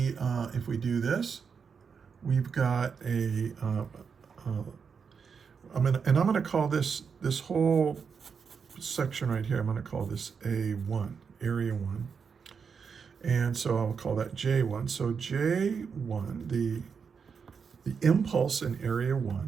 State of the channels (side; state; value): left; quieter; 6.1 dB